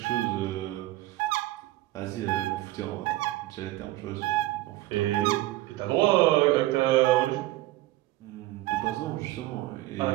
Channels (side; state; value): left; quieter; 17.3 dB